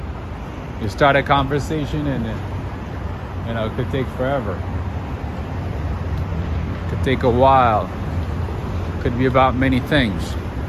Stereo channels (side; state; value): both; identical; correlation 1.00